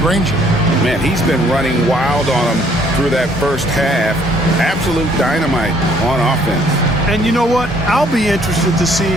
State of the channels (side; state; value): both; normal; correlation 0.63